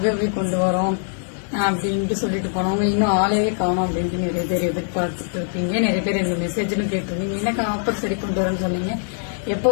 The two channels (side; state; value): right; silent; 60 dB below the other